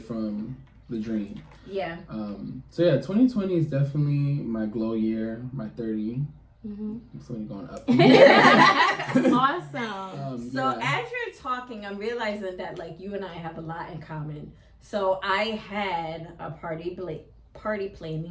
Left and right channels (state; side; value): identical; both; correlation 1.00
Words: the dream. Yeah. So yeah, 2020 is definitely my glow year, my 30. I'm slowly going up. Awesome. So as you're talking, I'm realizing that like you and I have a lot in common. So I had a party